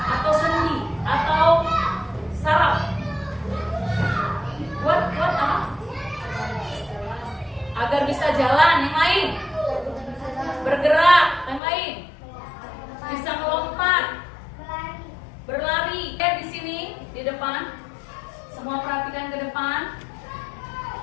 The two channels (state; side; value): drops out; right; at 11.6 s